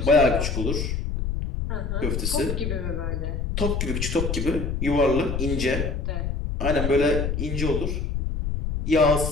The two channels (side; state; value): left; noise; rumble, 2 dB below the sound